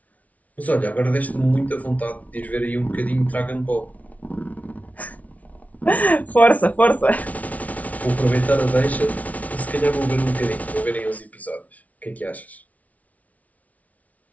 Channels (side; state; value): right; late; 0.070 ms